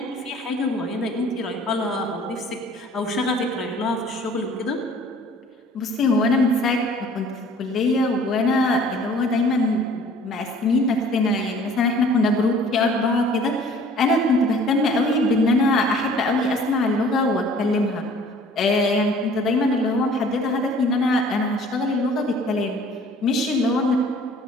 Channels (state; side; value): normal; both; correlation 0.51